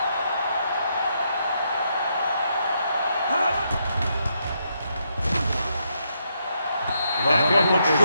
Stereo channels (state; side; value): inverted; both; correlation -0.79